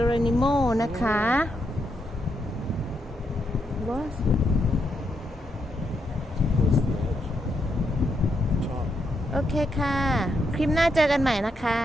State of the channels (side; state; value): both; normal; correlation 0.80